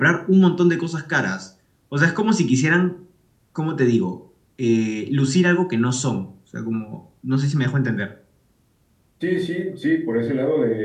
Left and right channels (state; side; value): identical; both; correlation 1.00